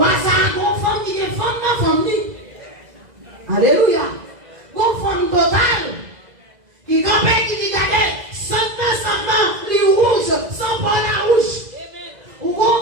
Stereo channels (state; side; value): late; left; 2.0 ms